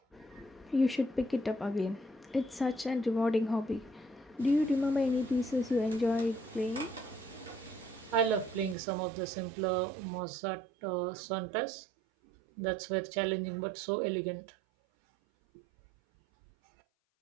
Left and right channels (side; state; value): left; drops out; at 8.8 s